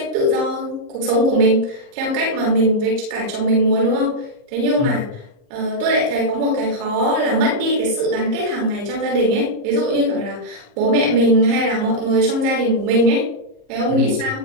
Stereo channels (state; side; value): late; left; 38 ms